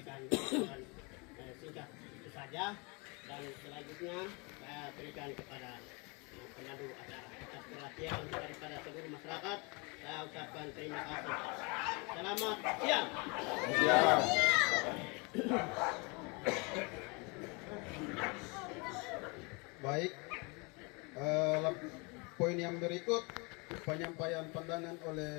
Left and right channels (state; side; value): quieter; right; 29.8 dB